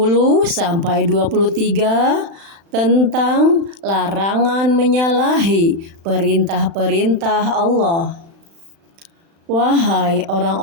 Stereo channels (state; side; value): late; left; 36 ms